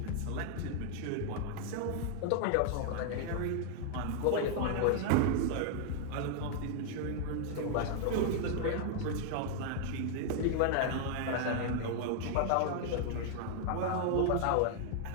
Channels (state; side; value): different; both; correlation 0.00